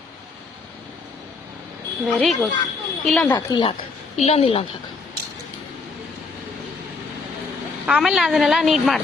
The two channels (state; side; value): quieter; right; 4.2 dB